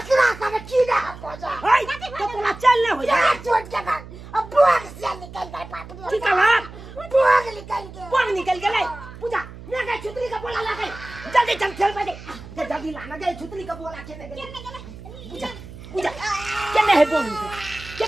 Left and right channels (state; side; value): noise; right; hum, 15 dB below the sound